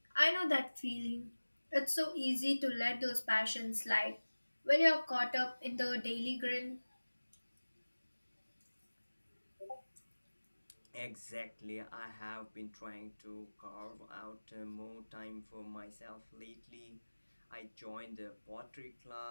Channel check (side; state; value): both; inverted; correlation -1.00